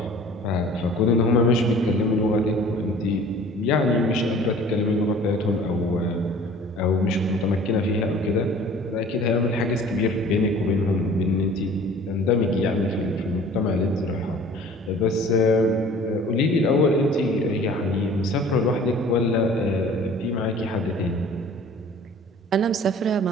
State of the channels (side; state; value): both; normal; correlation 0.47